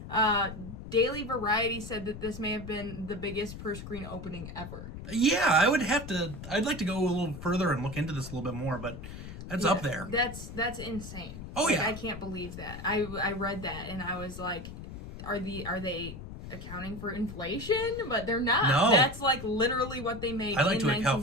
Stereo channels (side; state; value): left; noise; rumble, 11 dB below the sound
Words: Daily Variety said that this may have been the biggest per screen opening ever. Yeah, I'd like to go a little further and look into this a little bit more, but that's up there. That's insane. Oh, like, yeah. I can't believe that. I read that and I was like, are they accounting for inflation? But they're not. No. That's like literally what they made. I'd like in to account